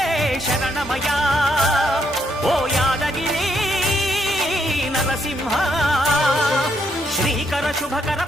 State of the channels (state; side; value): normal; both; correlation 0.75